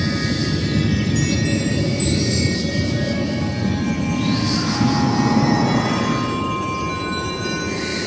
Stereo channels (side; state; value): both; identical; correlation 1.00